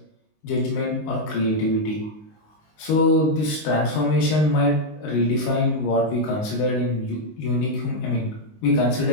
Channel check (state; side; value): late; right; 19 ms